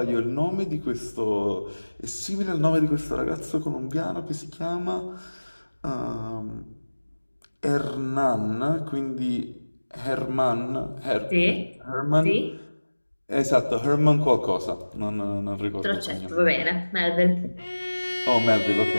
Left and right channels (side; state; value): both; inverted; correlation -1.00